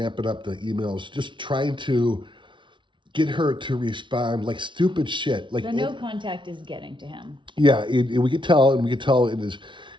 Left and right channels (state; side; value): late; left; 0.24 ms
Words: up the emails, just trying to get her to respond like stupid shit. Like, the no contact is getting to him. Yeah, and we could tell in